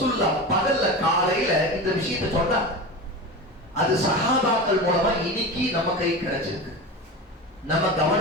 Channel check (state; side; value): normal; both; correlation 0.27